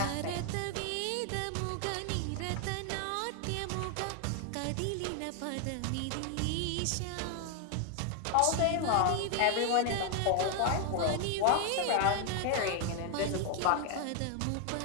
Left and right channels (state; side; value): different; both; correlation 0.00